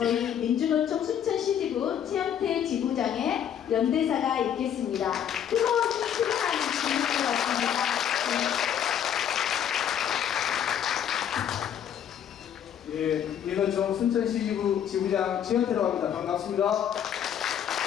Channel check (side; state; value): right; quieter; 9.4 dB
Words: 민주노총 순천시지부 최영태 지부장의 연대사가 있겠습니다. 뜨거운 힘을 주실 것 같습니다. 예, 민노총 순천시 지부장 최현태라고 합니다. 반갑습니다.